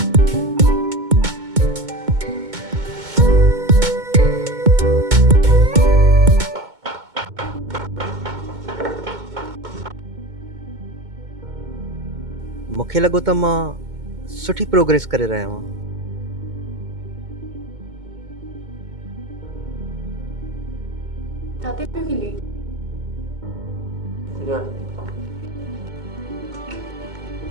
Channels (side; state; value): left; late; 2.2 ms